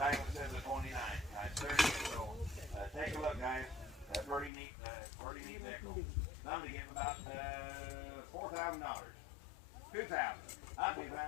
It says the 29. So take a look, guys. Pretty neat vehicle. I'm gonna give about $4,000. $2,000. $2,000.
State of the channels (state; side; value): drops out; right; at 4.5 s